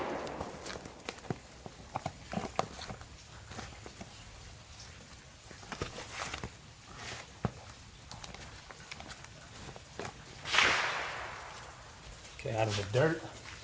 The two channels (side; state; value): both; identical; correlation 1.00